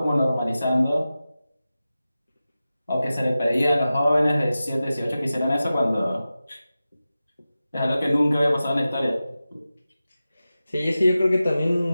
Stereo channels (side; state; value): both; inverted; correlation -0.94